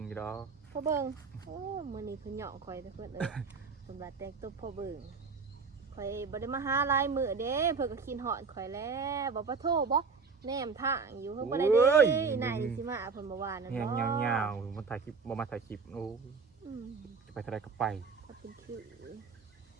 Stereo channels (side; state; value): left; quieter; 5.0 dB